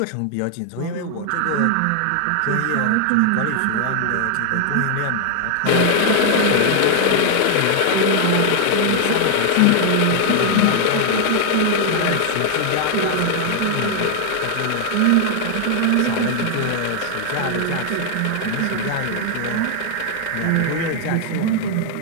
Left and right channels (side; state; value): both; different; correlation 0.00